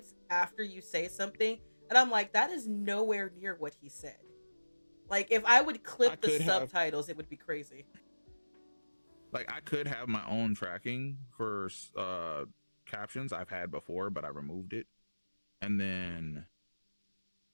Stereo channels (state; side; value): inverted; both; correlation -1.00